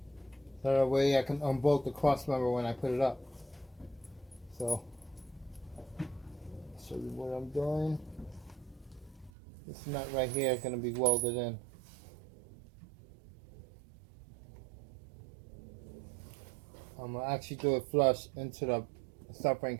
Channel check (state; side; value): drops out; left; at 9.3 s